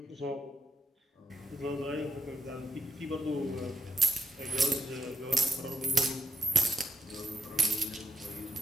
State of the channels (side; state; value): both; normal; correlation 0.81